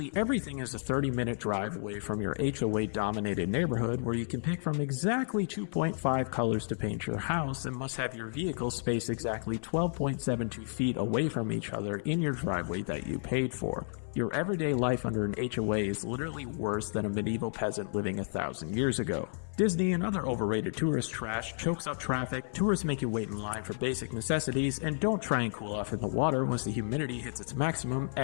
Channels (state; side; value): silent; right; 56 dB below the other